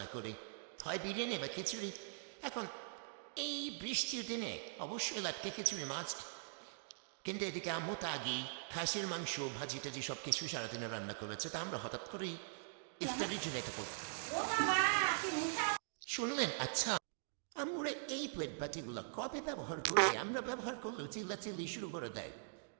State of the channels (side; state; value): left; silent; digital silence